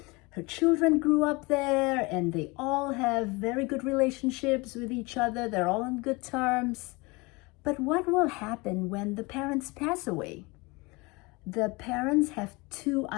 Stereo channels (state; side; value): quieter; right; 25.5 dB